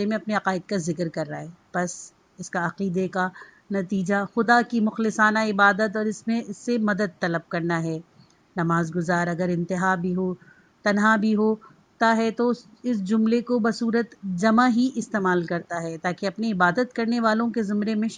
میں اپنے عقائد کا ذکر کر رہا ہے، بس اس کا عقیدے کا نتیجہ خدا کی مخلصانہ عبادت اور اس سے مدد طلب کرنا ہے۔ نماز گزار اگر انتہا بھی ہو، تنہا بھی ہوتا ہے تو اس جملے کو بصورت جمع ہی استعمال کرتا ہے، تاکہ اپنی عبادت کرنے والوں کے زمرے میں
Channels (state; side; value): identical; both; correlation 1.00